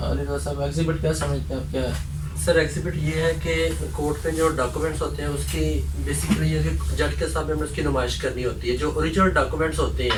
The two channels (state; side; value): identical; both; correlation 1.00